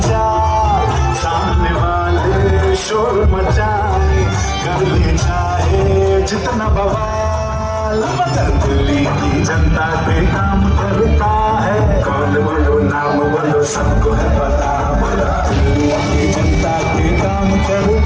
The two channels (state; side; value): identical; both; correlation 1.00